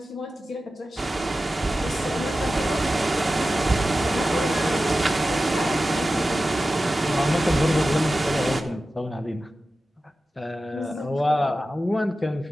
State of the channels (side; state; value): both; normal; correlation 0.94